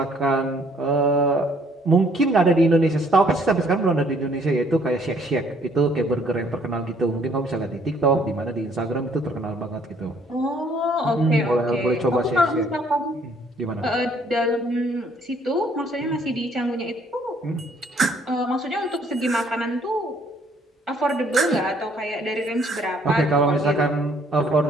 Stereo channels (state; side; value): normal; both; correlation 0.63